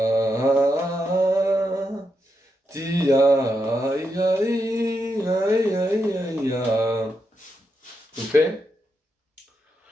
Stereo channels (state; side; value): normal; both; correlation 0.84